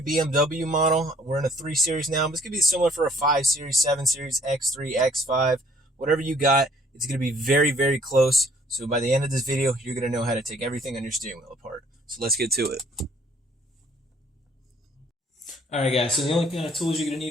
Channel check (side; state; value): both; normal; correlation 0.60